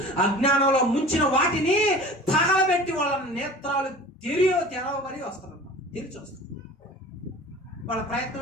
అజ్ఞానంలో ముంచిన వాటిని తగలబెట్టి వాళ్ళ నేత్రాలు తెరవబడి వస్తారన్నమాట. తెరిచి వస్తారు. వాళ్ళ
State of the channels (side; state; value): both; normal; correlation 0.41